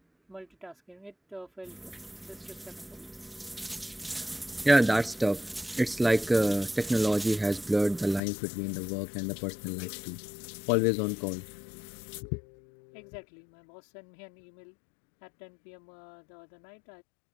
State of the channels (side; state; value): right; drops out; at 8.2 s